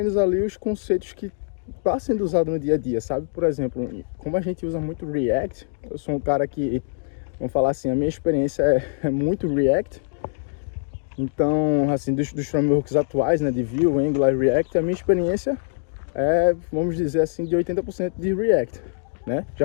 ali os conceitos que está sendo usado no dia a dia, sabe? Por exemplo, como a gente usa muito React, eu sou um cara que, vamos falar assim, a minha experiência é muito React. Então, assim, dos frameworks atuais, né, de Vue, Angular e React, a minha experiência é, vamos dizer assim, de 80% de React, né?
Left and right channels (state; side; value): silent; right; digital silence